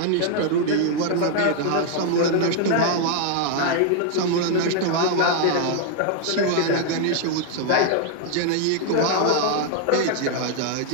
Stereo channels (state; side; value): different; both; correlation 0.00